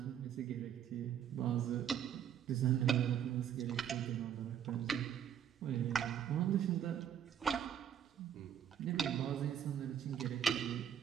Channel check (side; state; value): left; quieter; 9.2 dB